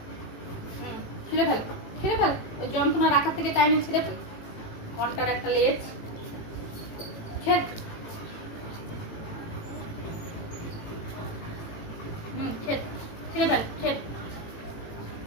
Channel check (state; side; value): late; right; 18 ms